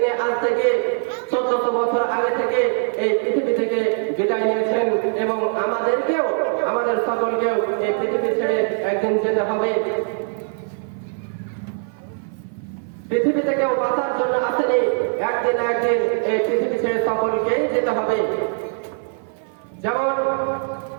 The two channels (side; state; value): left; silent; 55 dB below the other